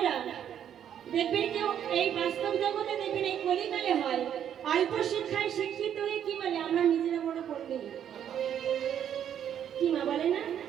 দেখবেন কেউ এই বাস্তব জগতে দেখবেন এই কলিকালে হয় অল্প শিক্ষায় শিক্ষিত হয়ে কি বলে? আমরা নিজেরা বড় পড়বে, কি মা বলে না?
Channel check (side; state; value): left; quieter; 9.5 dB